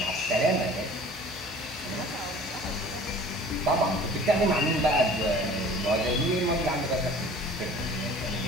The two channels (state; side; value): normal; both; correlation 0.47